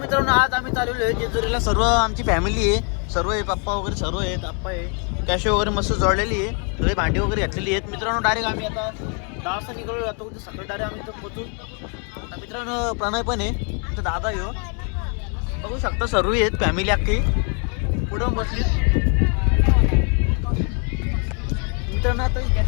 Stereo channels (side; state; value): right; quieter; 38.9 dB